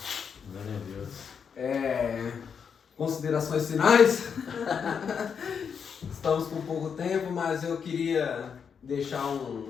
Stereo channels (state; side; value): quieter; right; 6.8 dB